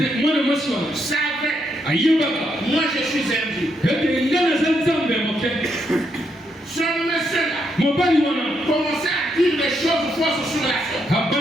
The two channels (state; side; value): normal; both; correlation 0.78